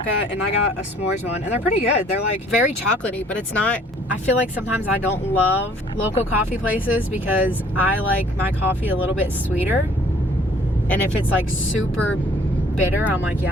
and I got a s'mores one, and they're pretty good. They're like very chocolatey, but it's not. I feel like sometimes I don't love local coffee places because I like my coffee a little bit sweeter, and if it's like super bitter, I'm like,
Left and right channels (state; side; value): normal; both; correlation 0.58